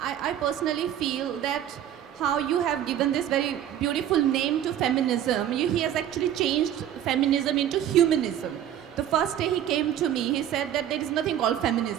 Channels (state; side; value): quieter; left; 10.7 dB